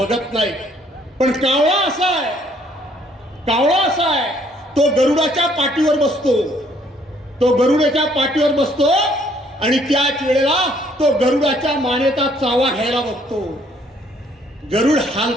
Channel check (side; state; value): both; normal; correlation 0.64